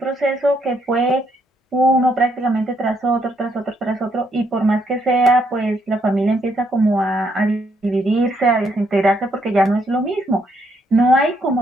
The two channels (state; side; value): normal; both; correlation 0.73